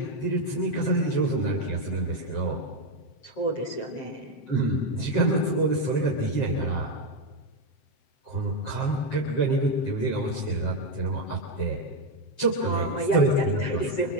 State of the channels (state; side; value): late; right; 7.6 ms